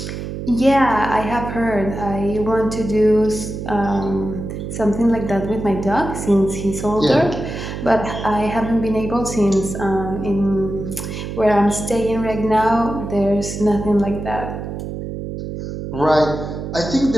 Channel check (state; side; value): noise; right; hum, 7 dB below the sound